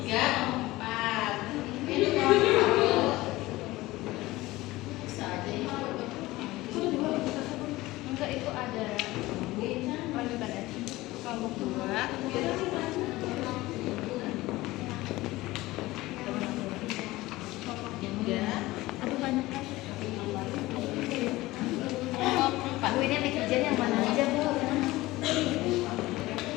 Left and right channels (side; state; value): right; quieter; 18.8 dB